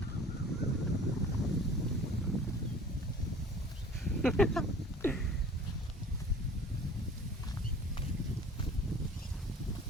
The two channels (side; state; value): both; normal; correlation 0.46